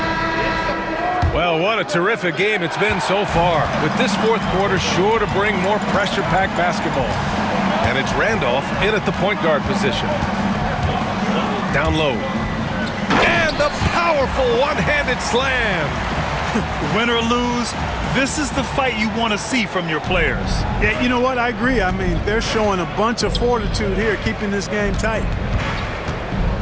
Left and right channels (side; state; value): both; identical; correlation 1.00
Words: Well, what a terrific game it's been so far. With this fourth quarter sure to bring more pressure-packed basketball. And it's Randolph in at the point guard position. Down low. And the powerful one-handed slam. Win or lose, this is the fight you want to see from your players. Yeah, you know what? I agree. I mean, they're showing a bunch of fortitude here, keeping this game tight.